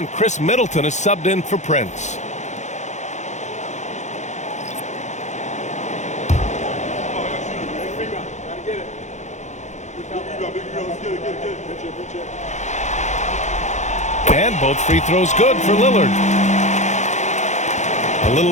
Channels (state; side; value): late; right; 0.34 ms